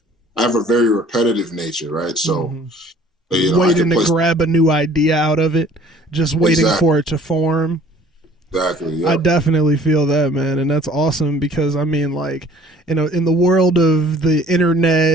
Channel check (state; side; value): normal; both; correlation 0.52